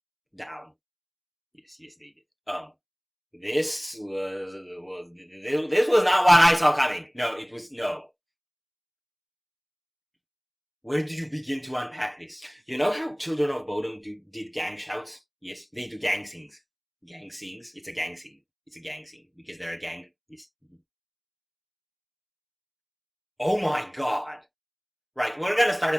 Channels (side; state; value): both; identical; correlation 1.00